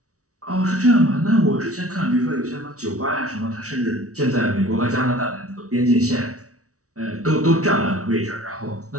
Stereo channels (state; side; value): late; left; 0.65 ms